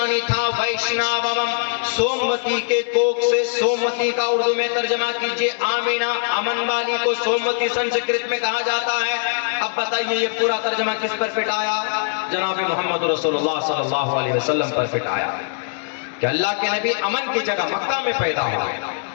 تھا ویشناوم، سوموتی کے کوکھ سے. سوموتی کا اردو میں ترجمہ کیجئے آمینہ، امن والی کو سوموتی سنسکرت میں کہا جاتا ہے. اب بتائیے یہ پورا ترجمہ کس پر فٹ آیا؟ جناب محمد رسول اللہ صلی اللہ علیہ وسلم پر فٹ آیا کہ اللہ کے نبی امن کی جگہ مکہ میں پیدا ہوئے.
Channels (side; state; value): right; silent; digital silence